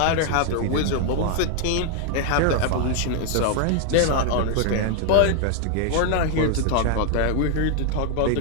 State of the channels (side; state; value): both; different; correlation 0.00